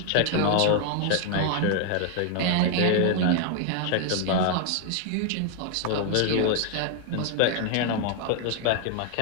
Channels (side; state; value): both; different; correlation 0.00